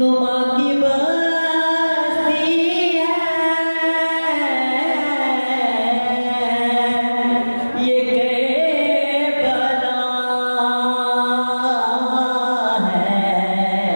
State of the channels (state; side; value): inverted; both; correlation -1.00